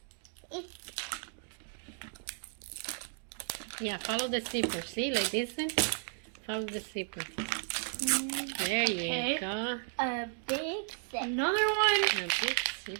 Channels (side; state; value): left; silent; 55 dB below the other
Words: Yeah, follow the zipper. See, like this one? Follow the zipper. There Okay. you go. A big zipper. Another one. A big